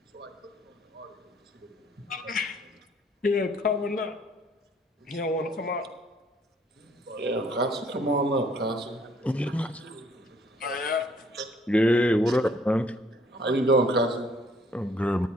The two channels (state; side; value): normal; both; correlation 0.62